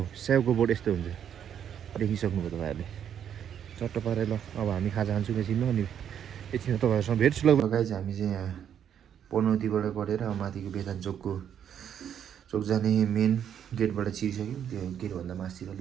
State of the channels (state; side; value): quieter; left; 9.0 dB